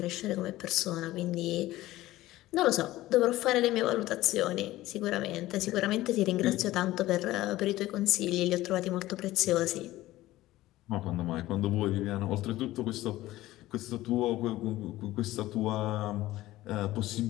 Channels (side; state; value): right; quieter; 16.4 dB